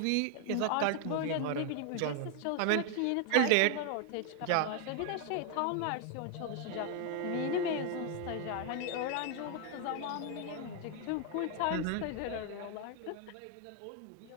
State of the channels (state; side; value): different; both; correlation 0.00